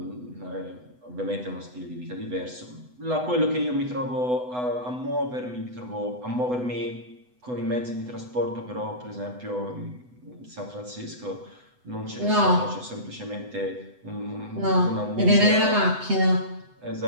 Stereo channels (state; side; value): late; left; 8.0 ms